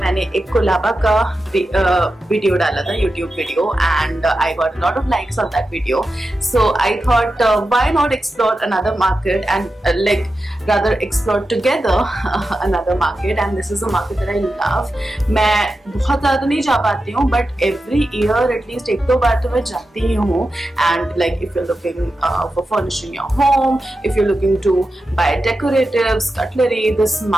एक कोलाबा का वीडियो डाला था, YouTube video, and I got a lot of likes on that video. So I thought, why not explore another market and rather explore together another market, and this is a market that I love. मैं बहुत ज़्यादा नहीं जा पाती हूँ, but every year at least एक दो बार तो मैं जाती ही हूँ. And like if you're looking for furnishing your home, if you're looking to buy decoratives, cutlery, this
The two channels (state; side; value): normal; both; correlation 0.91